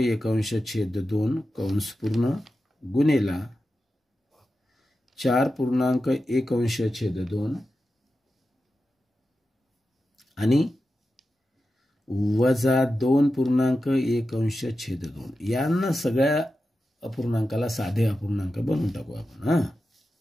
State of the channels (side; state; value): both; normal; correlation 0.91